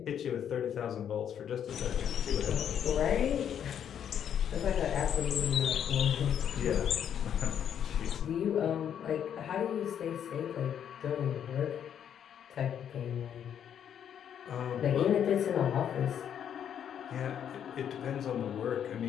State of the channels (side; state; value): right; quieter; 9.0 dB